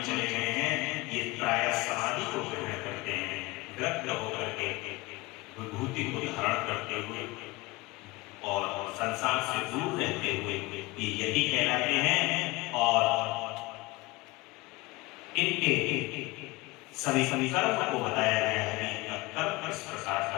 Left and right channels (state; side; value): quieter; right; 22.8 dB